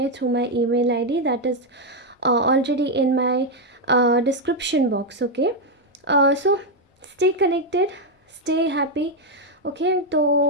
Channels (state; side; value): normal; both; correlation 0.02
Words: through my email ID that is already in my description box. Okay so stay connected, stay happy. Okay